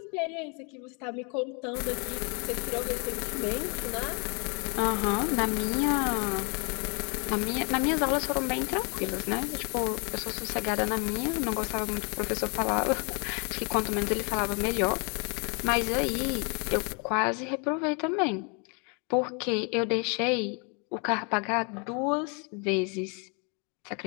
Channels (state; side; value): quieter; right; 34.8 dB